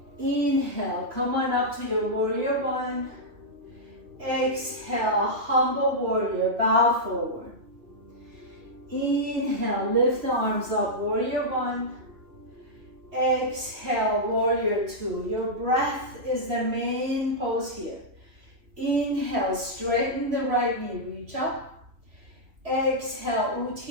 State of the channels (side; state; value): left; late; 2.9 ms